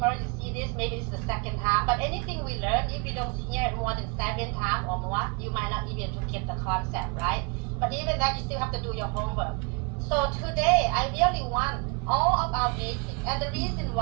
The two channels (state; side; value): quieter; left; 31.1 dB